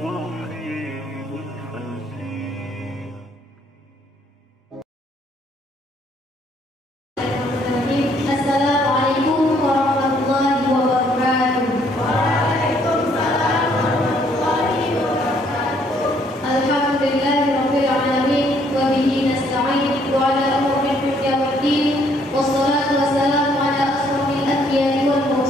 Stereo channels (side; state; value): both; normal; correlation 0.66